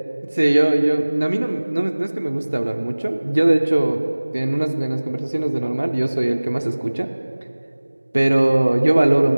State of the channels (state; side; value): inverted; both; correlation -1.00